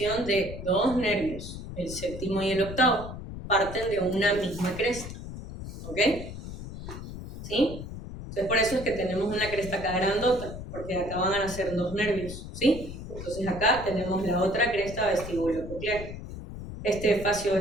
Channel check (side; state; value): left; noise; rumble, 10 dB below the sound